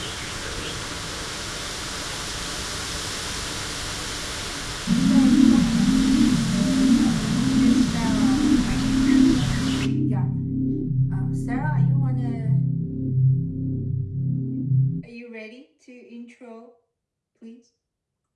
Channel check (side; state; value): both; identical; correlation 1.00